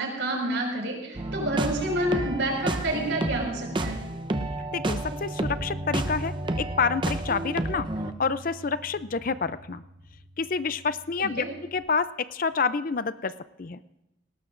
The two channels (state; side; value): normal; both; correlation 0.16